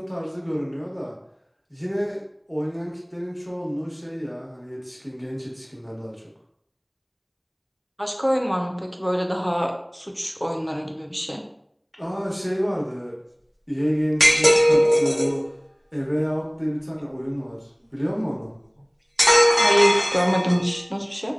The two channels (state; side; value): identical; both; correlation 1.00